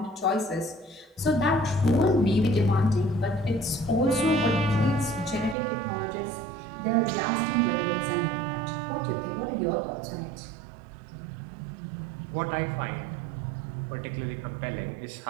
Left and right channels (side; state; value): left; drops out; at 5.6 s